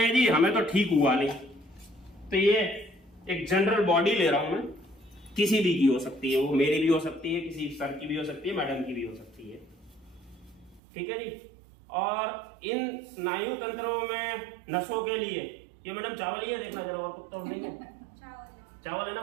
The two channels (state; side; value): drops out; left; at 10.8 s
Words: जी हमें तो ठीक हुआ नहीं। तो ये एक जनरल बॉडी ले रहा हूं मैं, किसी भी की हो सकती है, वो मेरी भी हो सकती है, किसी सर की भी हो सकती है, मैडम की भी हो सकती है, ठीक है जी। और इन स्नायु तंत्रों में नसों के लिए ये मैडम चावल ही है, देखना जरा, और पत्ता नहीं है। चावल है ना